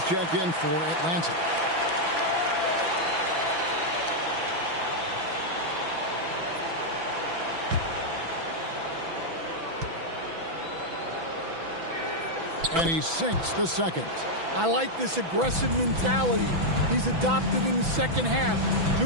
checked in for Atlanta. And he sinks the second. I like this aggressive mentality he's adopted in the second half,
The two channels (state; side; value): late; left; 6.0 ms